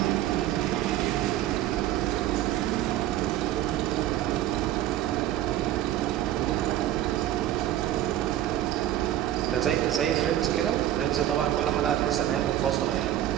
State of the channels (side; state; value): left; quieter; 12.7 dB